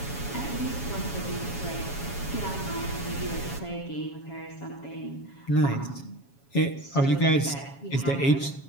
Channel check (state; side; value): late; right; 7.3 ms